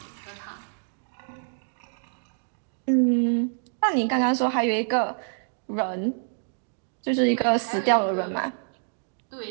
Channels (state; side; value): silent; left; digital silence